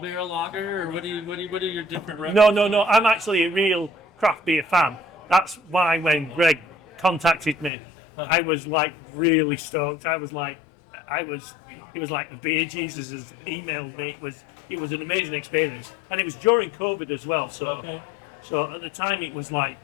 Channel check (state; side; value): drops out; right; at 7.7 s